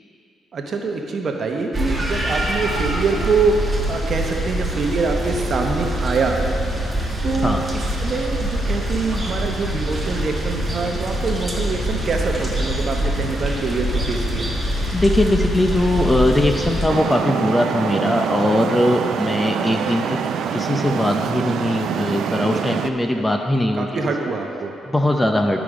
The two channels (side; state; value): both; normal; correlation 0.81